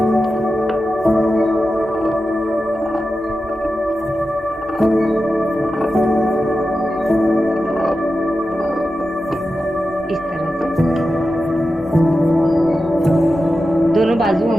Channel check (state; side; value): noise; right; hum, 25 dB below the sound